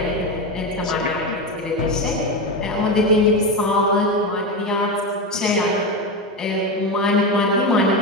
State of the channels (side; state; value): both; normal; correlation 0.16